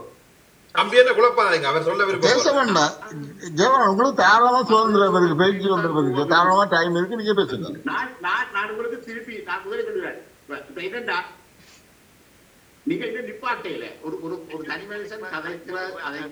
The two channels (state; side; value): identical; both; correlation 1.00